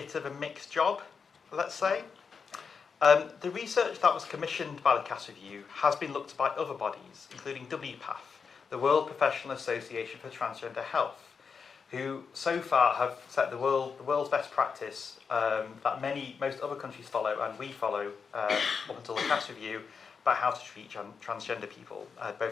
of a mixed job, let's say. The research that was commissioned by the Cass Review has been looked at by other bodies, including WPATH, the World Professional Association for Transgender Health, who so far have set the world's best practice that most other countries follow, and we follow up until the Cass Review, about how to treat transgender people,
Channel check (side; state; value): right; quieter; 5.7 dB